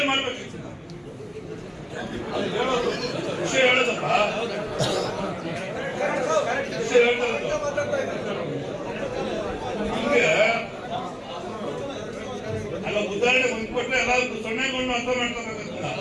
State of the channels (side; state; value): both; identical; correlation 1.00